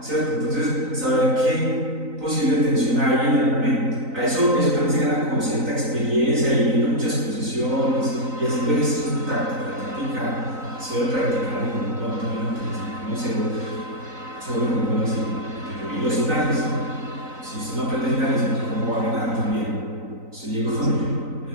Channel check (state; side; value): late; left; 3.9 ms